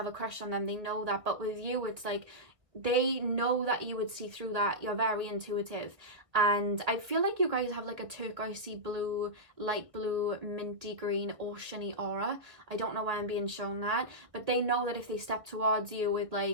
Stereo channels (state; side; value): late; left; 1.7 ms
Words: a crush on them. They know that. But with you, it's like, they know that you would see through that. You're very intuitive, and I feel like you guys have like a turquoisey blue, light blue, minty green, oceany aura. I don't know why I'm being shown that, but they know that if they step towards you with,